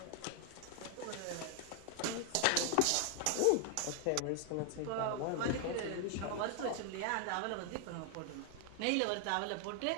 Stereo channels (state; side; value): different; both; correlation 0.00